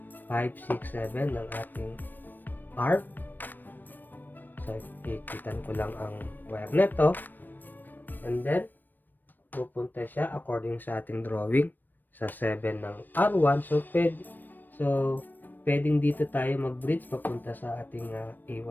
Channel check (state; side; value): late; right; 0.091 ms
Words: 5, 6, 7 ng ating R. So, ipitan ko lang ang wire nito. And then, pupunta siya according sa ating drawing sa 7 ng R1. So, pwedeng dito tayo mag-bridge papunta sa ating